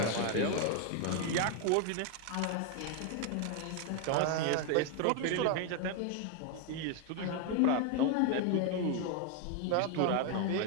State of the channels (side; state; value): both; different; correlation 0.01